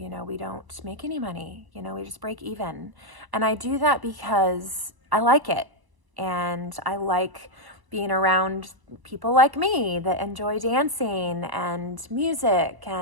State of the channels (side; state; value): left; late; 1.0 ms